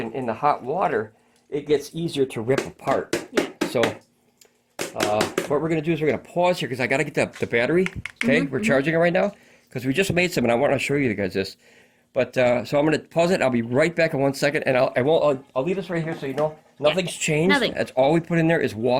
the hot water, it gets easier to rip apart. Yeah. So what we're going to do is we're going to pause here because I got to get the battery. Okay, we're charging it right now because we just made some, and I want to show you guys this. But so I'm going to pause it. I'll be right back in 1 second, and I'll leave this right here so you know nothing's changed. Nothing. That's all we put in there is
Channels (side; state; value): both; identical; correlation 1.00